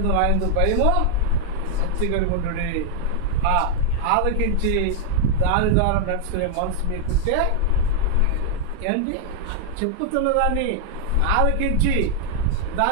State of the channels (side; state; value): both; different; correlation 0.00